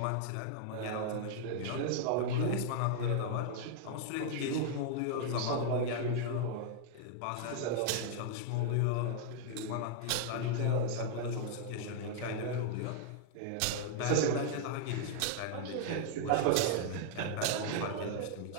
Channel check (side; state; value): both; different; correlation -0.01